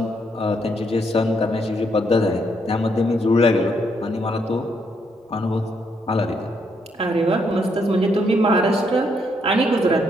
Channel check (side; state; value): both; normal; correlation 0.74